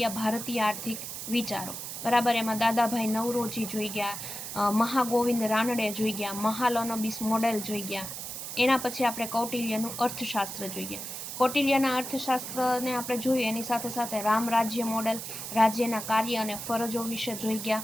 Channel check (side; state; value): right; noise; hiss, 7 dB below the sound